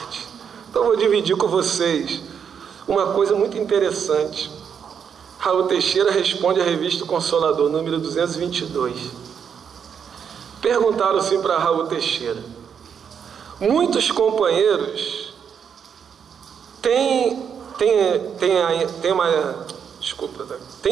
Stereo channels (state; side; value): quieter; left; 7.4 dB